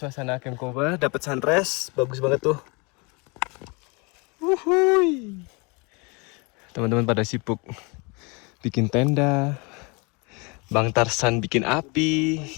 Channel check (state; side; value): quieter; right; 29.8 dB